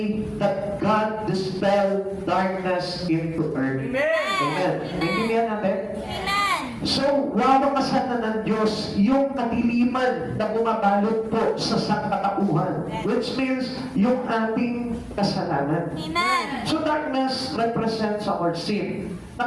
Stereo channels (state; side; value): identical; both; correlation 1.00